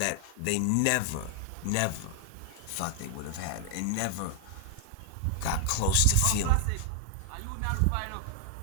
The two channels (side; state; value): both; different; correlation 0.00